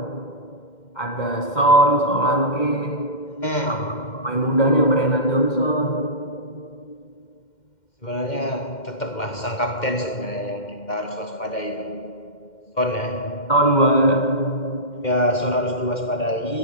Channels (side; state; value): right; late; 2.1 ms